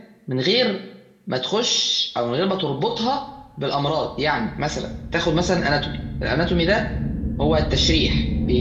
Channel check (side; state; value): both; identical; correlation 1.00